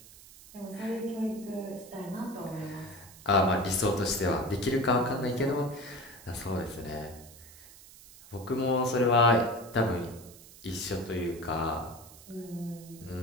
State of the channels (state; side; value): noise; right; hiss, 20 dB below the sound